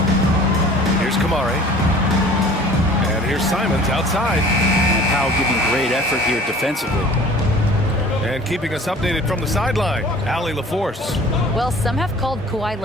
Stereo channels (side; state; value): both; normal; correlation 0.48